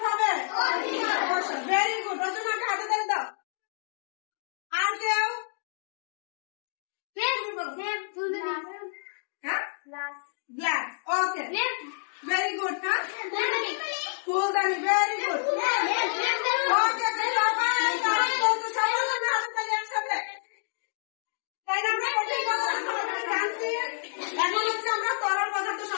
হবে? Very good. রচনাকে হাতে ধরে দাও। আর কেউ? গ্লাস। ওকে, ভেরি গুড। হ্যাঁ, ফুলদানি। Very good. ওকে, এখন হচ্ছে আমরা তরল পদার্থ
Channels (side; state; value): right; silent; digital silence